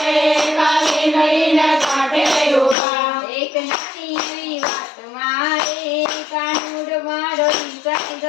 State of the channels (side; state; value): right; drops out; at 2.8 s